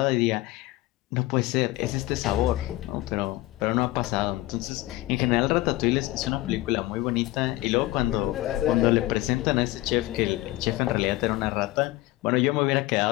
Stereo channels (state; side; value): quieter; right; 18.2 dB